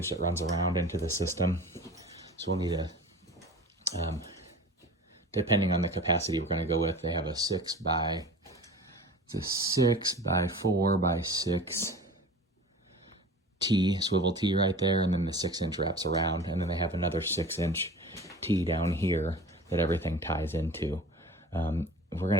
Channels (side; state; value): both; normal; correlation 0.39